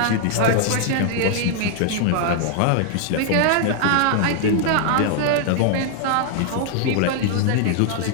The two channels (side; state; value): both; different; correlation -0.01